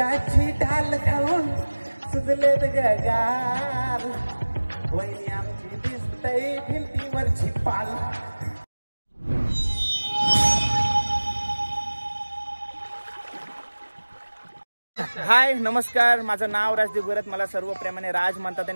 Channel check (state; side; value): inverted; both; correlation -1.00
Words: डाल खाऊन सुजलेत गगार, वहिनी आमची दिसतय भिंतीवरची पाल. हाय नमस्कार, माझं नाव राजदीप गरत, मला सर्व प्रेमाने राज म्हणतात